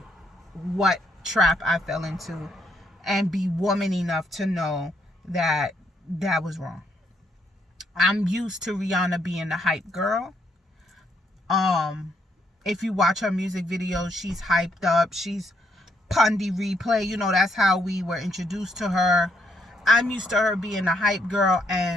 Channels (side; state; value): both; normal; correlation 0.73